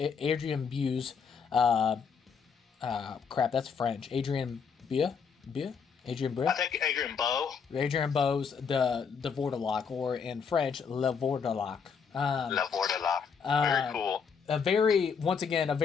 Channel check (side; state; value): right; quieter; 6.2 dB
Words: Buse. Crap, that's French. Adrian Bue. Adrian Bue? I think Adrian Bowe. Adrian Bowe's the Vordelok, or in French, Le Vordelok. Le Vordelok. Very cool. A